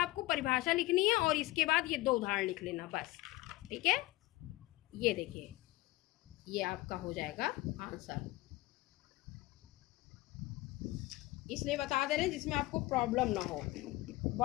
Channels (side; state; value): right; quieter; 19.0 dB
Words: परिभाषा लिखनी है और इसके बाद ये 2 उदाहरण लिख लेना बस, ठीक है। ये देखिए, ये आपका हो जाएगा आंसर, इसलिए बता दे रहे हैं जिसमें आपको प्रॉब्लम ना हो।